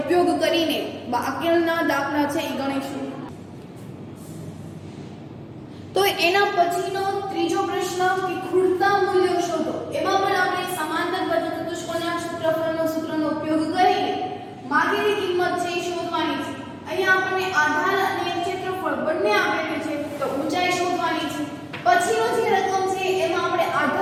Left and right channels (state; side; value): identical; both; correlation 1.00